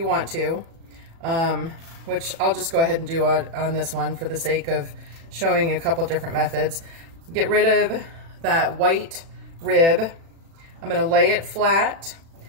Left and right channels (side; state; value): left; late; 36 ms